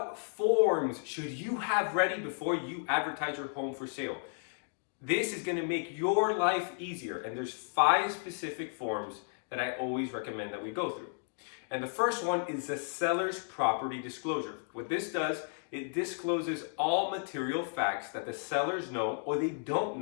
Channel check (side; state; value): right; silent; digital silence